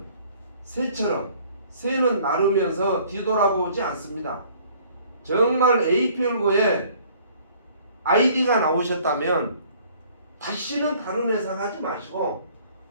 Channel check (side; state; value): both; inverted; correlation -0.56